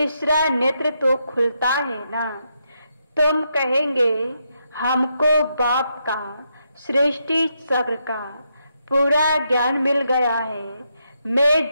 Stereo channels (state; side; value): inverted; both; correlation -0.81